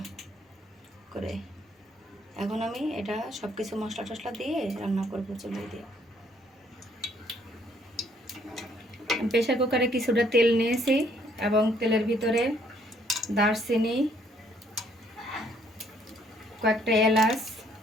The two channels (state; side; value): normal; both; correlation 0.66